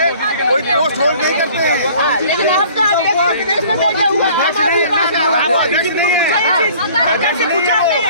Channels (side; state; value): both; inverted; correlation -0.51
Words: कोई पोस्ट होल्ड नहीं करते हैं। लेकिन आपका अध्यक्ष विदेश में बैठा हुआ है। अध्यक्ष नहीं है, सरकार से पूछा